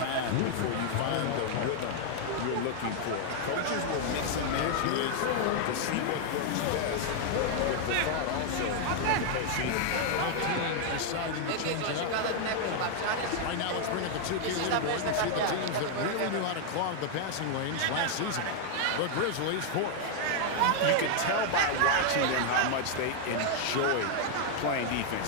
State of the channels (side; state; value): both; different; correlation 0.00